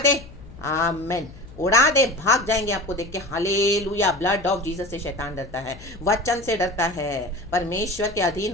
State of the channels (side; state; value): left; noise; hum, 19 dB below the sound